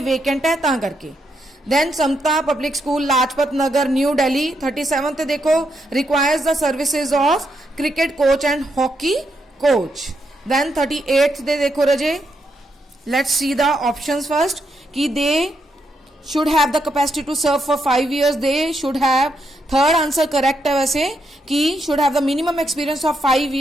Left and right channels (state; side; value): normal; both; correlation 0.80